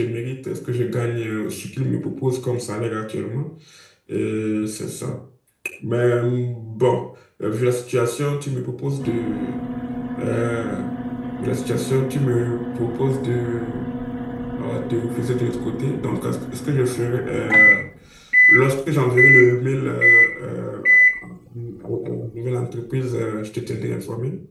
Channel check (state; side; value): identical; both; correlation 1.00